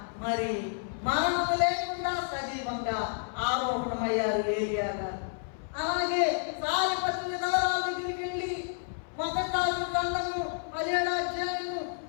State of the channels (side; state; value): right; silent; 58 dB below the other